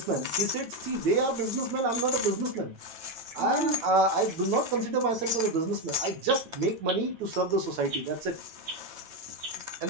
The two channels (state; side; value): late; left; 9.1 ms